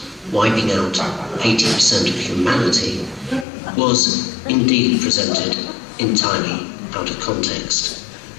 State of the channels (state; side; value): drops out; right; at 3.5 s